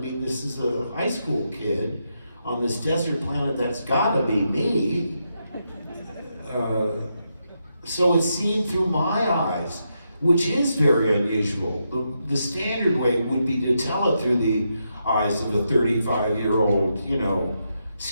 this is a high school kid on this desert planet. That's gotta be me. So it's seen through my eyes, which is very unusual. The standard way would be to tell it through the eyes of a 35-year-old,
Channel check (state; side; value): inverted; both; correlation -0.83